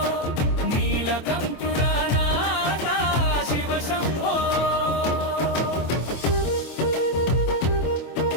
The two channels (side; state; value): right; late; 24 ms